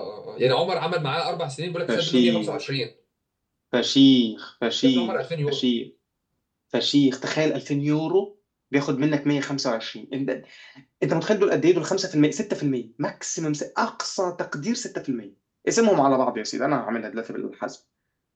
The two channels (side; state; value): both; identical; correlation 1.00